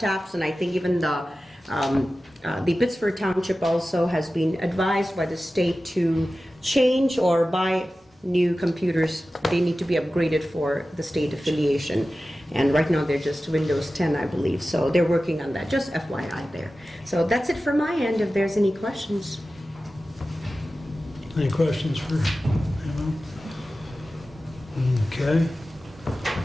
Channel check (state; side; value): normal; both; correlation 0.95